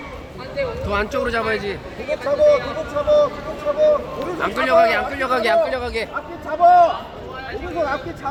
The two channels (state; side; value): identical; both; correlation 1.00